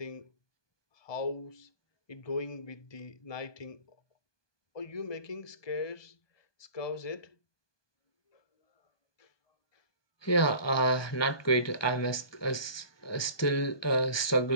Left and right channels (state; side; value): late; right; 1.2 ms